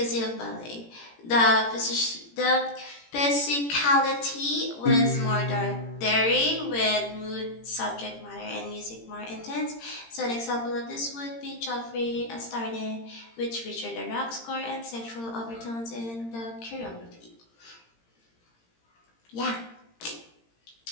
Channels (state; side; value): late; right; 17 ms